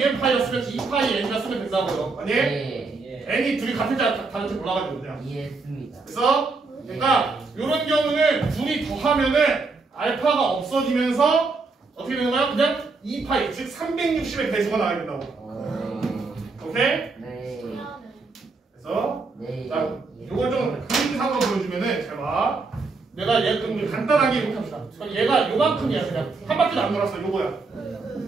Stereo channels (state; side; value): quieter; left; 4.0 dB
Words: 파이였으면 2파이 n이라 쓰면 된다고요 아니? 네. n이 둘이 같은지 다른지 몰라가지고 그냥 이해했습니다. 그래서 그러니까 이런 경우는 둘이 더하면은 알파가 없어지면서 어떻게 되는 거야? 그냥 2파이 즉 360의 배수가 나와야 된다고 오케이? 네. 그래서 네. 자 요걸 좀 그림상으로 보여주면은 잘 봐. 내가 얘 그럼 간단하게 이렇게 합시다. 그럼 얘가 요만큼이야 그냥 한 바퀴도 안 돌았어 요거야.